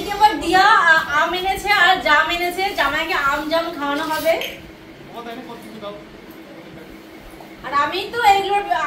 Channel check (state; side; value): identical; both; correlation 1.00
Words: আবার দিয়া আম এনেছে আর জাম এনেছে, জামাইকে আম জাম খাওয়ানো হবে। আর আমি তো